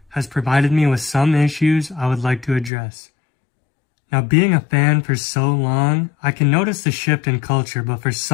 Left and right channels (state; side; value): drops out; right; at 2.7 s